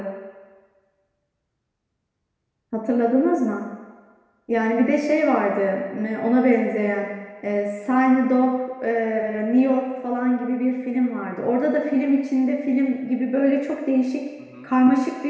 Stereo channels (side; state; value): both; identical; correlation 1.00